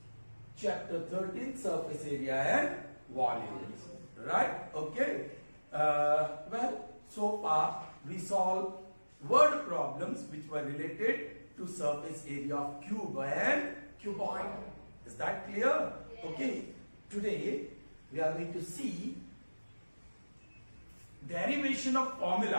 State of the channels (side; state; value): both; inverted; correlation -1.00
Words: chapter 13, surface area and volumes. Right? Okay. Well, so far we solved word problems which were related to surface area of cube and cuboid. Is that clear? Yes. Okay. Today we are going to see derivation of